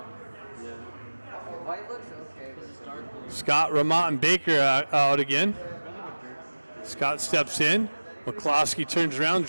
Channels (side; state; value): both; inverted; correlation -1.00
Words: Scott, Remont, and Baker out again. Scott steps in. McCloskey turns around,